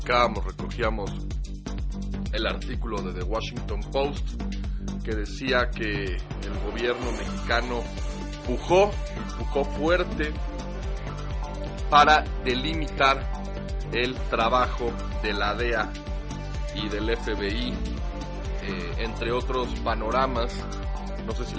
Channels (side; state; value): both; identical; correlation 1.00